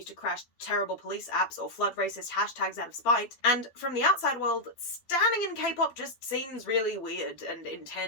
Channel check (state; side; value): late; right; 12 ms